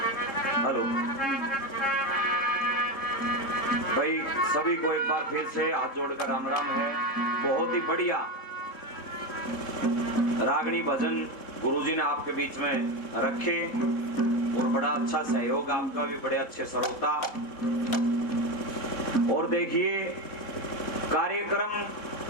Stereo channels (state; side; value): late; right; 3.7 ms